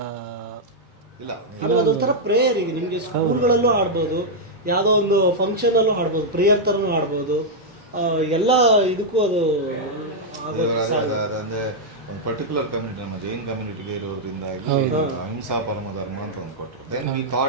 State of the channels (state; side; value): normal; both; correlation -0.04